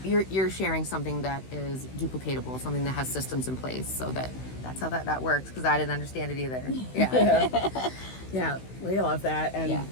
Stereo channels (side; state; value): right; late; 16 ms